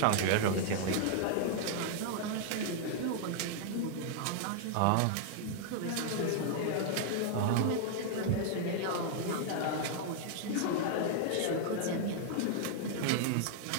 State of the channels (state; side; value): different; both; correlation -0.01